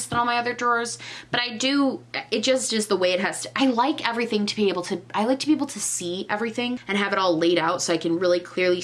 than all my other drawers, but it just is the way it has to. I like everything to be able to, I like to be able to see everything and have it all laid out so I can really clearly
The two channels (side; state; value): both; identical; correlation 1.00